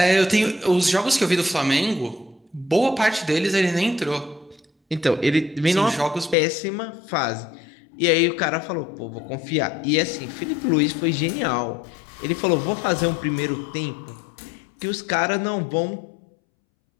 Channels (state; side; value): drops out; right; at 6.4 s